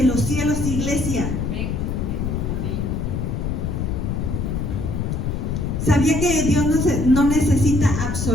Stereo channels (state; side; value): noise; left; rumble, 1 dB below the sound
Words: los cielos, iglesia. ¿Sabía que Dios no necesita